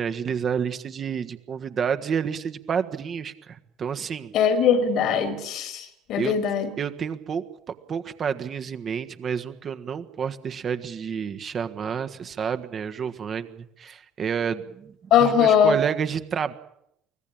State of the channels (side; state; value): both; normal; correlation 0.53